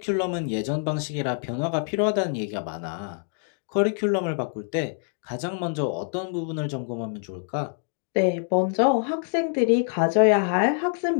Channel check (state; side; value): silent; right; 56 dB below the other